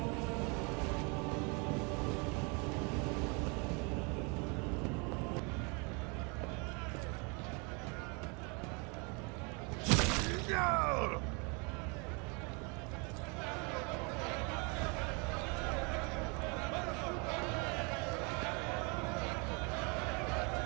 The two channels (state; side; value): quieter; left; 32.0 dB